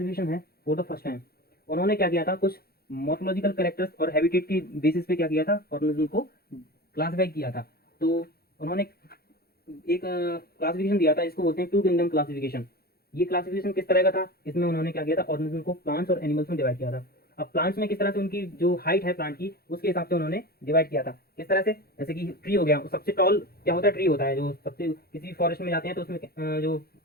है फॉर द फर्स्ट टाइम। उन्होंने क्या किया था, कुछ मॉर्फोलॉजिकल कैरेक्टर्स और हैबिटेट की बेसिस पे क्या किया था, ऑर्गेनिज्म को क्लासिफाई किया था। तो उन्होंने एक क्लासिफिकेशन दिया था, इसको बोलते हैं टू किंगडम क्लासिफिकेशन। ये क्लासिफिकेशन किस तरह का था, इसमें उन्होंने क्या किया था, ऑर्गेनिज्म को प्लांट्स और एनिमल्स में डिवाइड किया था। अब प्लांट्स में किस तरह से उनकी जो हाइट है प्लांट की, उसके हिसाब से उन्होंने डिवाइड किया था। किस तरह से? जैसे कि ट्री हो गया, सबसे टॉल क्या होता है, ट्री होता है। जो सबसे किसी भी फॉरेस्ट में जाते हैं तो उसमें जो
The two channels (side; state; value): right; late; 0.45 ms